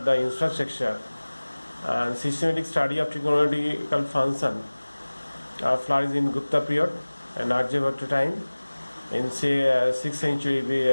the infrastructure and systematic study of trigonometrical function flourished in Gupta period and Aryabhatta time in say 6th century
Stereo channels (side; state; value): both; inverted; correlation -1.00